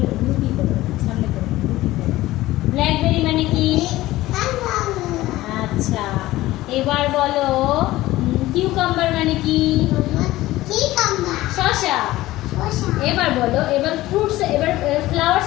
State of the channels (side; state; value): right; quieter; 16.9 dB